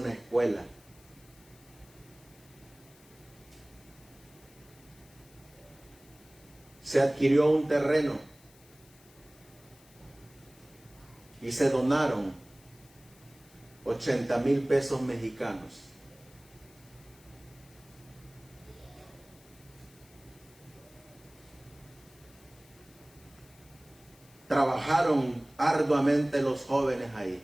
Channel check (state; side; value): noise; left; hiss, 26 dB below the sound